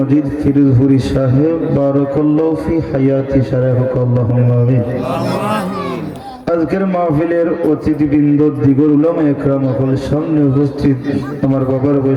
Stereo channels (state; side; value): identical; both; correlation 1.00